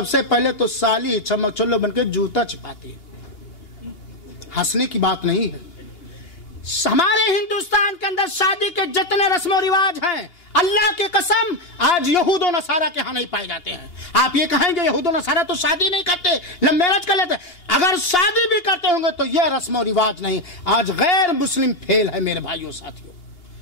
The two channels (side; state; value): right; late; 2.8 ms